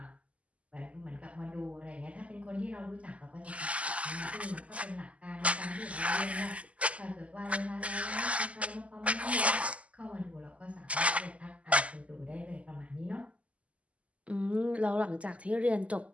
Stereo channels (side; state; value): left; late; 0.065 ms